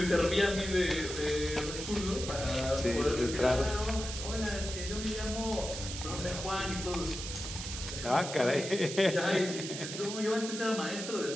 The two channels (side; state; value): right; noise; hiss, 7 dB below the sound